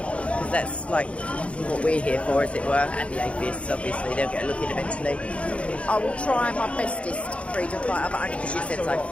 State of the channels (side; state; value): right; late; 0.062 ms